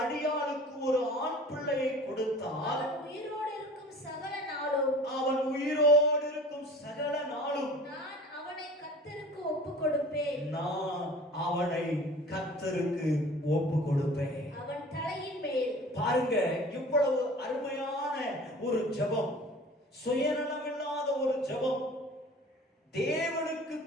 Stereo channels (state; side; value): normal; both; correlation 0.43